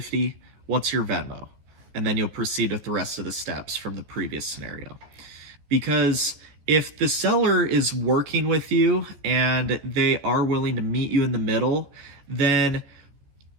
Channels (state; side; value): late; left; 14 ms